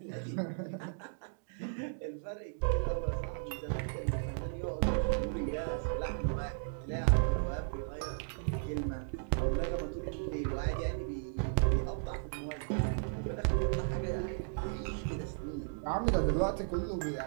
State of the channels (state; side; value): silent; left; digital silence